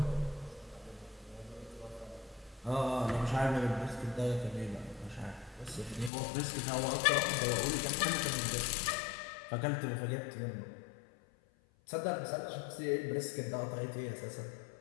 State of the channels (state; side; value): drops out; right; at 6.1 s